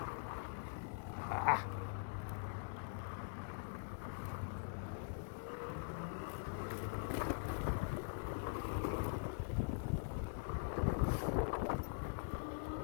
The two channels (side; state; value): right; silent; digital silence